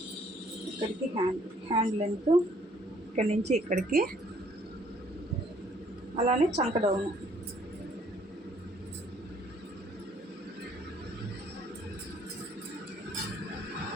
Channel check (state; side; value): normal; both; correlation 0.63